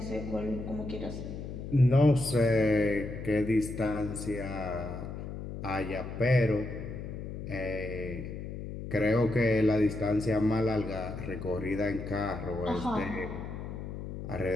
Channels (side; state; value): left; noise; hum, 8 dB below the sound